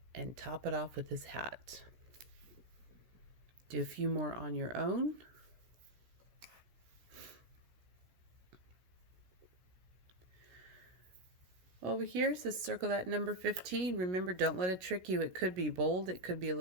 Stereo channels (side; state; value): left; late; 16 ms